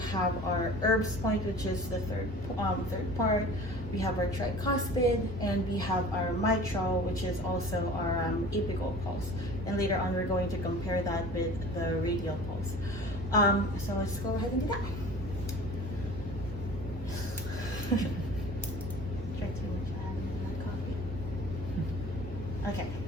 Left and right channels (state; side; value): normal; both; correlation 0.43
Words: have our herbs point, which is the third part. We have our tricuspid, and we have our mitral, which is also our apical pulse. And later on, we're going to compare that with the radial pulse. So let's go ahead and do that. Drank too much, I haven't had my coffee. Okay.